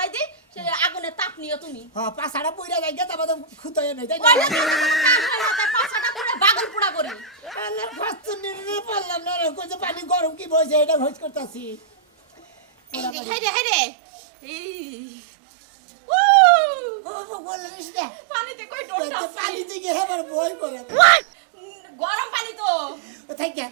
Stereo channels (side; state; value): left; drops out; at 13.2 s